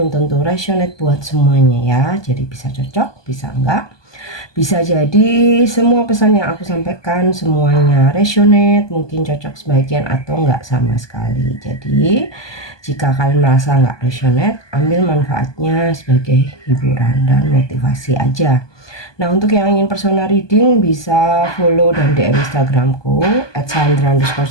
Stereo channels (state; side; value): late; right; 1.2 ms